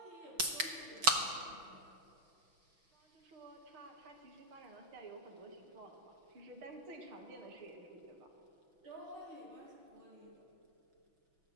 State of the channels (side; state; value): left; late; 6.0 ms